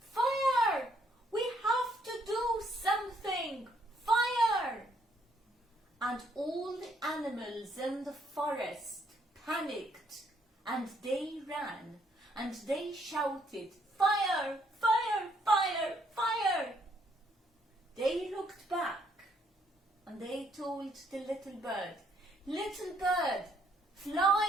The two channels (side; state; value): both; normal; correlation 0.70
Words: We have to do something! Fire!" And all the animals in the forest panicked, and they ran, and they shouted, "Fire! Fire! Fire! Fire!" They looked back, and they told the little bird, "Little bird,